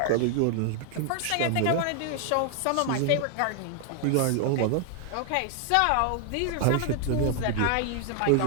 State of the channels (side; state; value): both; different; correlation 0.00